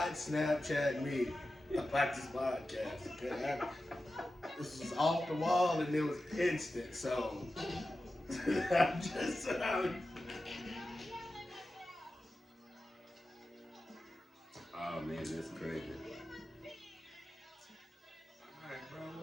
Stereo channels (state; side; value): normal; both; correlation 0.93